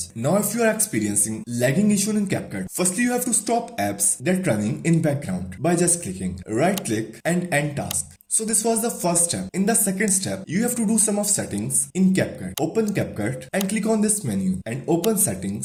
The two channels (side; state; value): both; identical; correlation 1.00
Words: Now if you are experiencing lagging issue in Capcut, firstly you have to stop apps that are running in background by just clicking right click and end task. So this was the first step. In the second step, you have to do some of settings in Capcut. Open Capcut and click on this menu and open